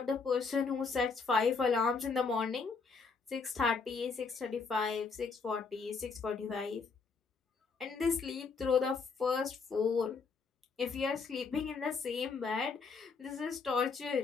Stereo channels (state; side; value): quieter; right; 4.9 dB